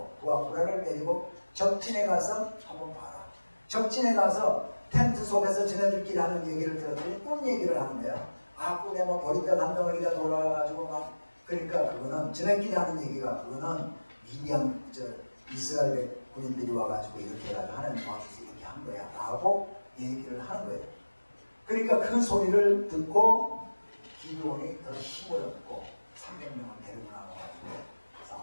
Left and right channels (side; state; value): both; inverted; correlation -1.00